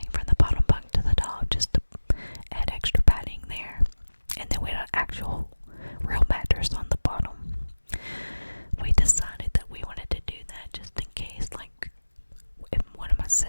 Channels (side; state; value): both; inverted; correlation -1.00